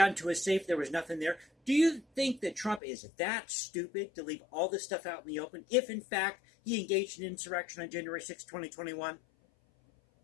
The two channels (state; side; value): drops out; right; at 2.8 s